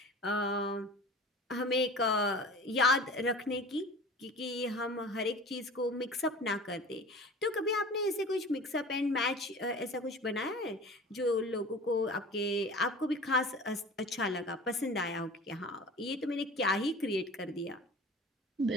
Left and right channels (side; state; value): both; normal; correlation 0.40